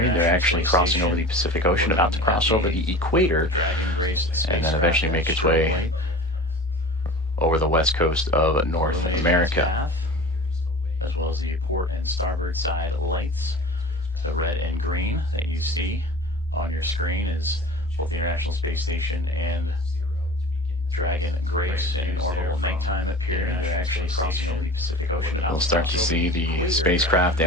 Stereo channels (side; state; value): both; normal; correlation 0.37